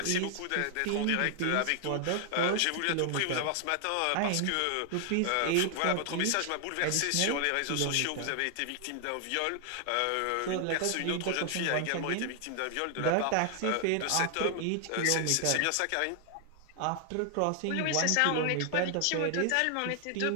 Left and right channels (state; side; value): different; both; correlation 0.00